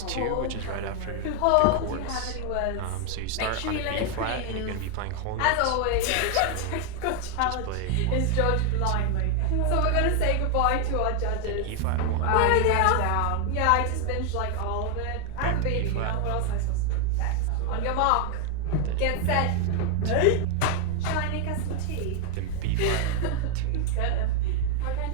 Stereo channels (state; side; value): different; both; correlation 0.01